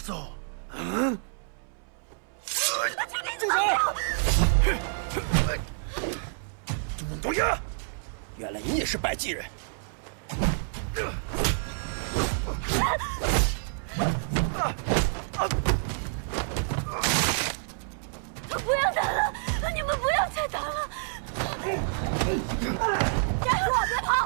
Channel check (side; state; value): left; silent; 59 dB below the other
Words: 응? 죽이지 마세요. 杜东阳，原来你也是百济人。不要打了！你们不要再打了！站住！别